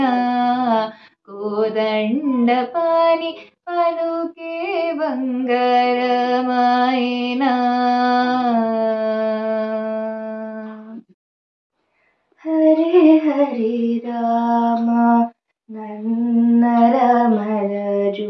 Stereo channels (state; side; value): identical; both; correlation 1.00